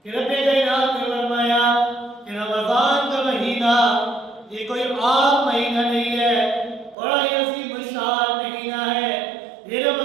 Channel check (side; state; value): left; drops out; at 7.0 s